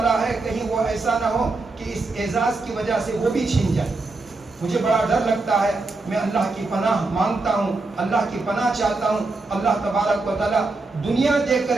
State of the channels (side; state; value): left; quieter; 3.4 dB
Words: ہے کہیں وہ ایسا نہ ہو کہ اس اعزاز کی وجہ سے وہ بھی چھین جائے۔ مجھے بڑا ڈر لگتا ہے، میں اللہ کی پناہ مانگتا ہوں، اللہ کی پناہ چاہتا ہوں، اللہ تبارک و تعالیٰ دنیا دیکھ